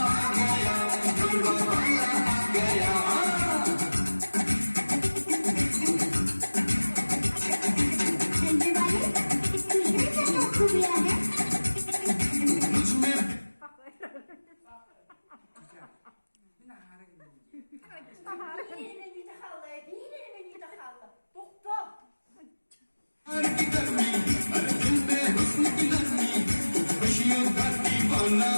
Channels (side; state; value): both; inverted; correlation -1.00